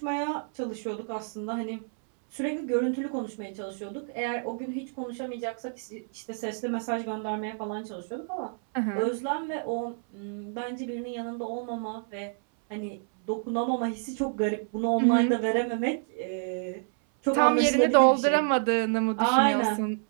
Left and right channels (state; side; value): silent; left; 59 dB below the other